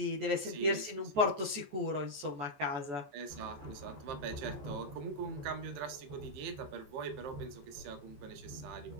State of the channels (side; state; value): left; late; 14 ms